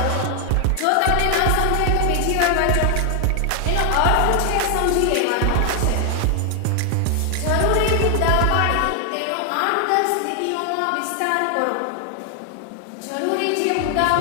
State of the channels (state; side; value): different; both; correlation 0.00